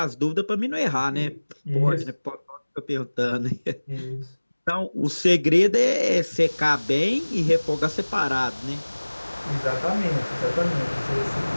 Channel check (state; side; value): inverted; both; correlation -1.00